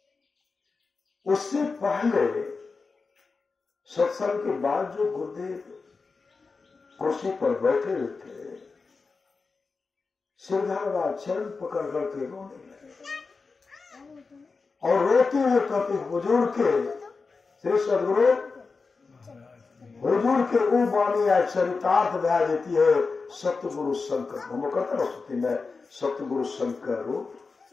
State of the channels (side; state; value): right; quieter; 4.4 dB